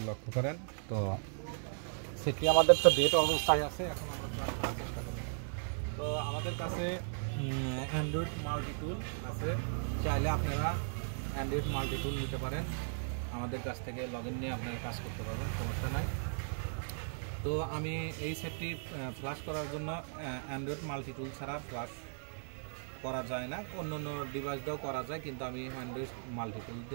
লক্ষ্য করেন। তো সেটি আমাদের তো ডেট অবস্থায় আছে, এখন আমরা ফ্লাশ করার চেষ্টা করব। তো আমাদের কাছে অ্যান্ড্রয়েড মাল্টিটুল আছে, চাইলে আপনারা অ্যান্ড্রয়েড মাল্টিটুল নিতে পারেন। আমাদের কাছ থেকে লগ ইন নিয়ে আপনারা কাজ করতে পারবেন, সমস্যা নাই। তো আমি এই সেটটি ফ্লাশ করার জন্য অ্যান্ড্রয়েড মাল্টিটুল ছাড়া ফ্লাশ করা যায় না, অন্য অন্য ডিভাইস দিয়েও করা যায়, কিন্তু আমি অ্যান্ড্রয়েড মাল্টিটুল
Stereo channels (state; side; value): silent; left; 54 dB below the other